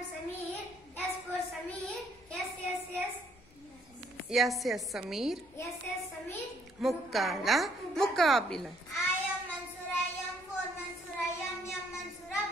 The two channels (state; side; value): noise; left; hum, 27 dB below the sound